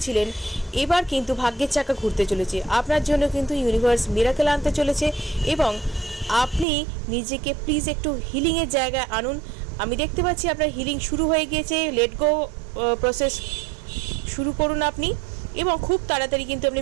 এবার কিন্তু ভাগ্যের চাকা ঘুরতে চলেছে আপনার জন্য। কিন্তু ইউনিভার্স মিরাকেল আনতে চলেছে এবং আপনি নিজেকে প্লিজ একটু হিলিংয়ের জায়গায় আনুন। আমি দেখতে পাচ্ছি আপনার হিলিং শুরু হয়ে গিয়েছে। লেট গো প্রসেস শুরু করুন আপনি, এবং খুব তাড়াতাড়ি কিন্তু আপনি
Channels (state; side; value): drops out; left; at 6.7 s